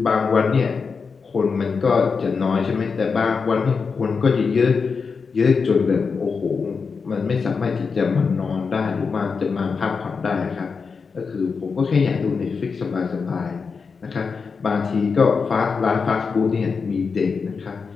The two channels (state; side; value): quieter; right; 5.2 dB